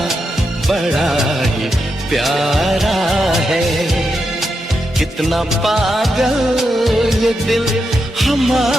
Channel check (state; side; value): normal; both; correlation 0.85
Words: बड़ा ही प्यारा है। कितना पागल ये दिल